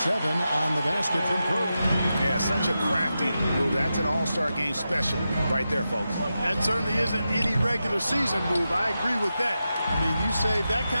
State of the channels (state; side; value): inverted; both; correlation -0.90